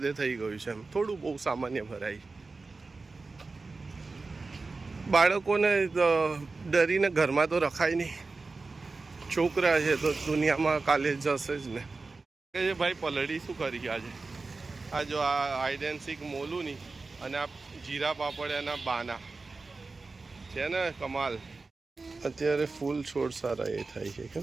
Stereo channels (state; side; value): quieter; left; 3.8 dB